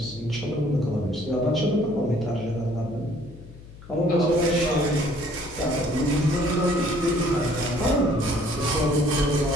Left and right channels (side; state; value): left; noise; hum, 18 dB below the sound